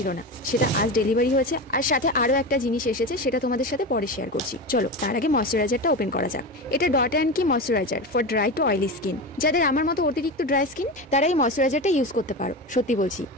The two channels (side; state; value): both; normal; correlation 0.23